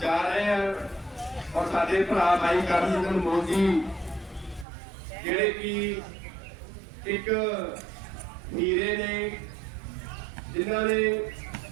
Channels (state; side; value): drops out; left; at 4.7 s